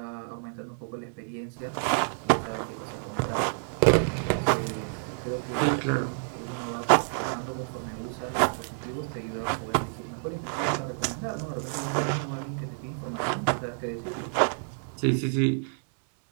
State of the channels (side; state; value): left; silent; digital silence